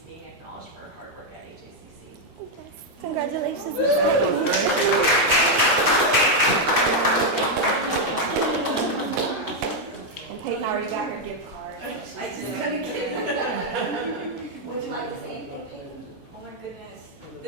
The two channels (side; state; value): both; normal; correlation 0.01